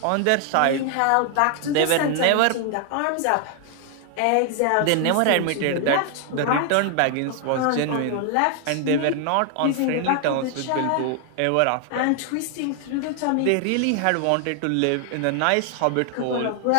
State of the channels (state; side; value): different; both; correlation 0.00